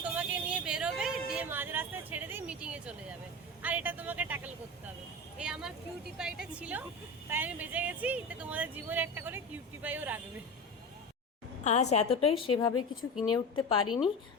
তোমাকে নিয়ে বেরোবে, দিয়ে মাঝ রাস্তায় ছেড়ে দিয়ে মিটিংয়ে চলে যাবে। আর এটা তোমাকে ট্যাকল করতে হবে। এই আমার কিউটি পাইটা ছিল, তাই আমি বেঁচে গেছি। তো তোমাদের জীবনে একটা করে কিউটি পাইও রাখবে। আজ এতটাই, সেভাবে কিছু কিনে উঠতে পারিনি।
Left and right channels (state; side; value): normal; both; correlation 0.26